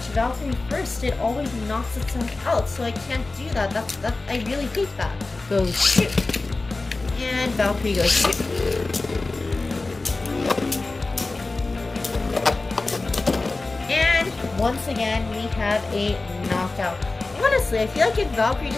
Valkyrie first, it always knocks itself out, so I can't do that. I really hate that. Go shoot! And Valkyrie goes shoot! And once again, we have a knockout. Honestly, I feel like if Valkyrie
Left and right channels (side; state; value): right; quieter; 3.4 dB